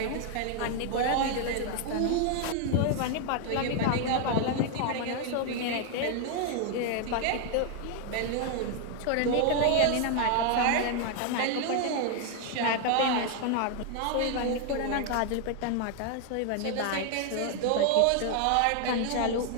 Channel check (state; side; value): different; both; correlation 0.00